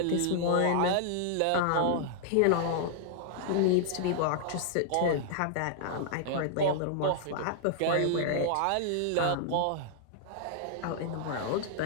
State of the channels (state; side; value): different; both; correlation -0.01